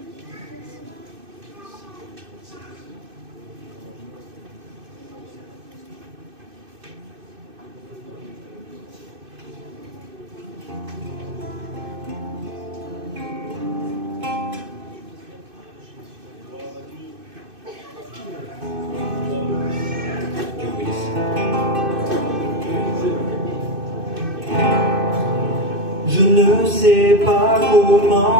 Je ne sais pas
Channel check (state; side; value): late; left; 2.6 ms